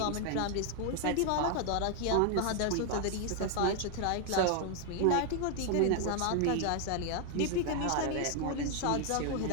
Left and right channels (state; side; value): different; both; correlation 0.00